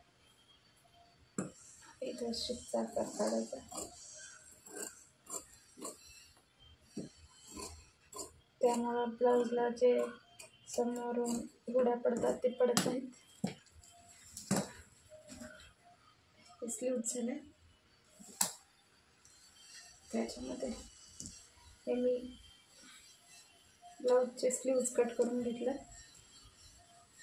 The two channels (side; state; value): both; identical; correlation 1.00